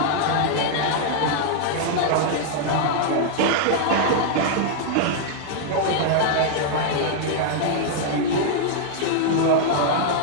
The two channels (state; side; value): different; both; correlation -0.01